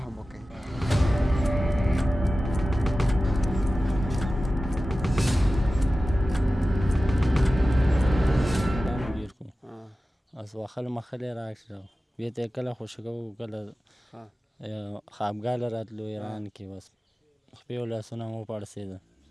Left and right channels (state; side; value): normal; both; correlation 0.95